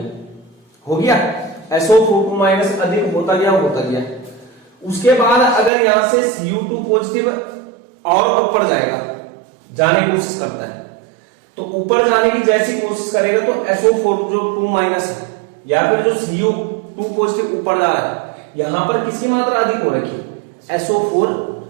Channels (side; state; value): left; drops out; at 5.7 s